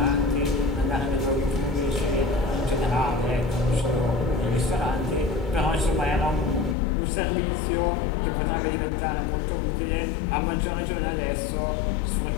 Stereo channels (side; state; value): right; drops out; at 6.8 s